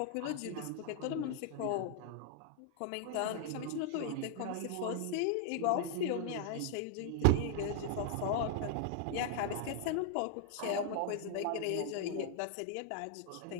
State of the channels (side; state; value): both; different; correlation 0.00